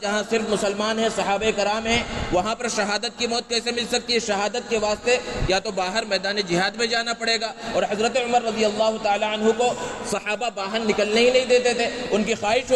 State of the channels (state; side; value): identical; both; correlation 1.00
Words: جہاں صرف مسلمان ہیں, صحابہ کرام ہیں, وہاں پر شہادت کی موت کیسے مل سکتی ہے؟ شہادت کے واسطے یا تو باہر میدان جہاد میں جانا پڑے گا, اور حضرت عمر رضی اللہ تعالیٰ عنہ کو صحابہ باہر نکلنے ہی نہیں دیتے تھے. ان کی خواہش